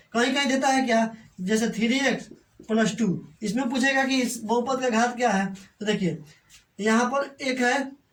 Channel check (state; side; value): identical; both; correlation 1.00